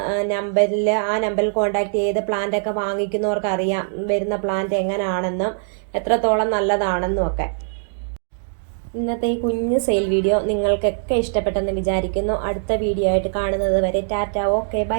ആ നമ്പറിൽ കോൺടാക്ട് ചെയ്ത് പ്ലാന്റൊക്കെ വാങ്ങിക്കുന്നവർക്ക് അറിയാം വരുന്ന പ്ലാന്റ് എങ്ങനെയാണെന്നും എത്രത്തോളം നല്ലതാണെന്നും ഒക്കെ. ഇന്നത്തെ ഈ കുഞ്ഞു സെയിൽ വീഡിയോ നിങ്ങൾക്കൊക്കെ ഇഷ്ടപ്പെട്ടെന്ന് വിചാരിക്കുന്നു. അടുത്ത വീഡിയോ ആയിട്ട് കാണുന്നത് വരെ ടാറ്റ, ഓക്കെ,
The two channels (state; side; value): silent; left; digital silence